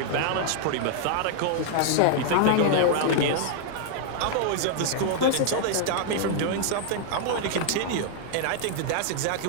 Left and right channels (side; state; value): both; different; correlation -0.01